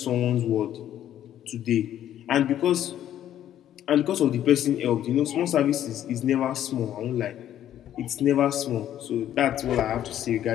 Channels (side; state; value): right; quieter; 11.3 dB